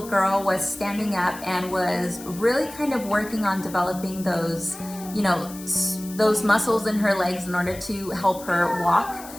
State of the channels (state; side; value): noise; left; hiss, 16 dB below the sound